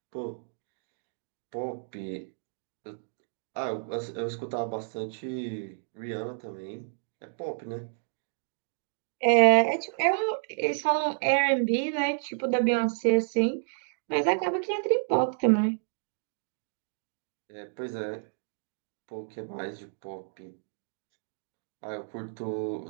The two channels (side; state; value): left; silent; digital silence